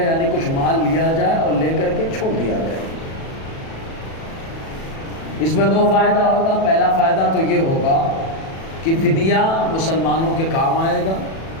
یعنی کچھ مال لیا جائے اور لے کر کے چھوڑ دیا جائے۔ اس میں دو فائدہ ہوگا۔ پہلا فائدہ تو یہ ہوگا کہ فدیہ مسلمانوں کے کام آئے گا،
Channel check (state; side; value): late; right; 37 ms